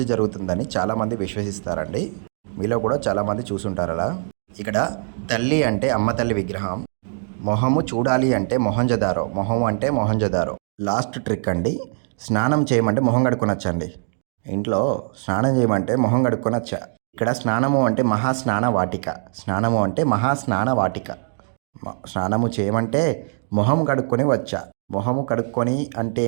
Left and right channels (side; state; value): left; silent; digital silence